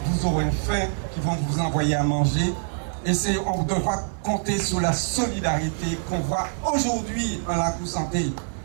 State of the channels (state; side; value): silent; left; digital silence